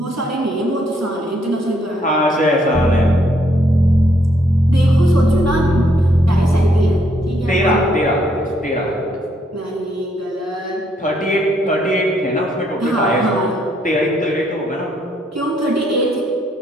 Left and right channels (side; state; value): both; normal; correlation 0.71